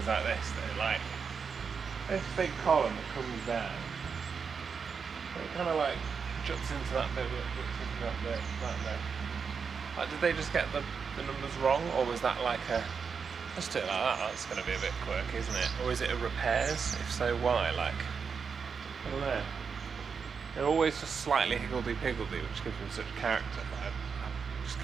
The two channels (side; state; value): left; quieter; 5.9 dB